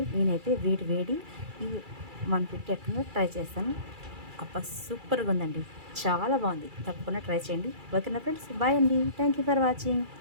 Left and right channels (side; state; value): left; late; 2.3 ms